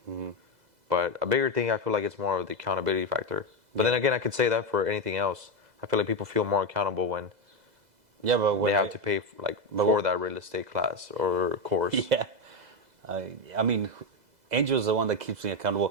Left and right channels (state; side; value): late; left; 2.0 ms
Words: Mm-hmm. But a bigger thing, I feel like it's more of the accountability factor. But then again, I could say that for anything else. I feel like people feel more accountable when Yeah, but they when have to pay but for what- that real estate class or course. Yeah, I mean, Angel's the one that keeps me